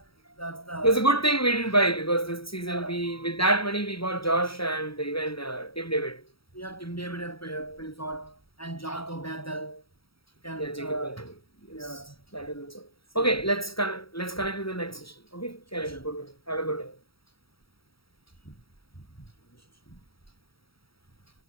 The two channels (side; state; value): right; late; 0.75 ms